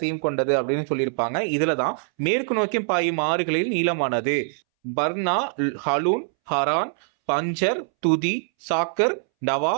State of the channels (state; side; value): silent; left; 63 dB below the other